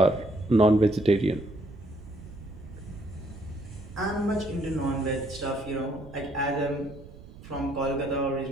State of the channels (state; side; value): noise; right; rumble, 17 dB below the sound